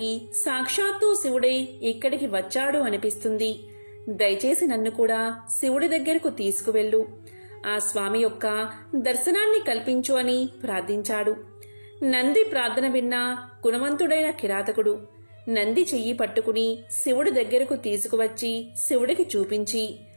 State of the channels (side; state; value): both; inverted; correlation -1.00